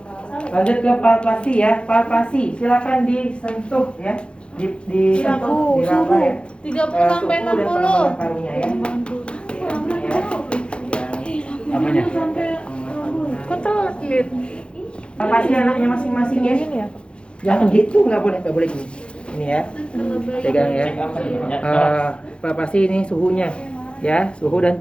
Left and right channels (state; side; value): late; right; 0.056 ms